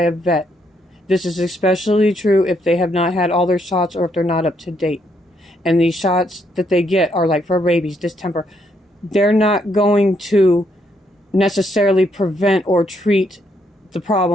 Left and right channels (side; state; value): both; normal; correlation 0.74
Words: vet. This is especially true if they have not had all their shots or if they're not up to date. And these shots that they get are like for rabies, distemper. They're not going to necessarily prevent or treat the